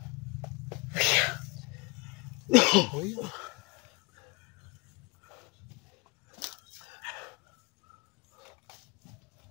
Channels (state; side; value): quieter; right; 26.4 dB